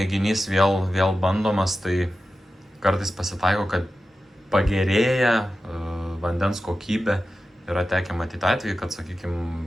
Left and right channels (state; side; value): normal; both; correlation 0.93